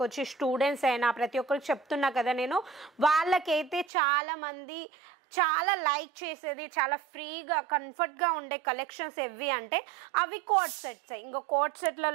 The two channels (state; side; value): drops out; left; at 3.9 s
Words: వచ్చి స్టూడెంట్స్ అయినా ప్రతి ఒక్కరికి చెప్తున్నా కదా నేను, వాళ్ళకైతే చాలామంది చాలా లైక్ చేసేది, చాలా ఫ్రీగా కంఫర్ట్గా ఉండే కలెక్షన్స్ ఎవి అంటే అవి కోట్ సెట్స్. ఇంకా కోట్